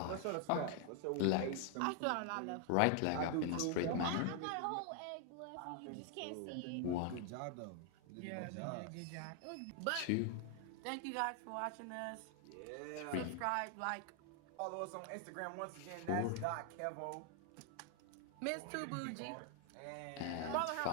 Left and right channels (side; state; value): both; different; correlation 0.00